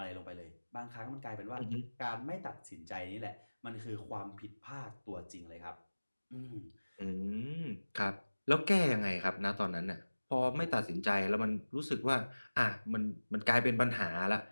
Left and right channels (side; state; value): both; inverted; correlation -1.00